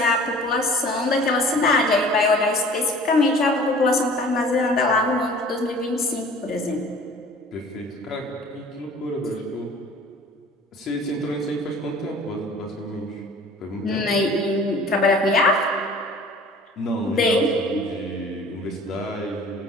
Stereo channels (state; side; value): normal; both; correlation 0.47